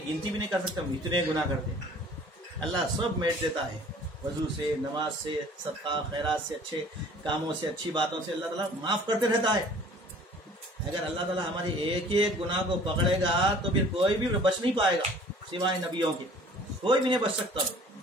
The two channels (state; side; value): normal; both; correlation 0.50